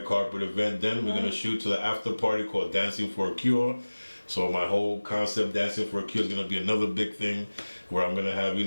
carpet event. Then we're going to shoot to the after party called Dancing for a Cure. So my whole concept, Dancing for a Cure, is going to be another big thing where I'm going to have,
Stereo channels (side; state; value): both; inverted; correlation -1.00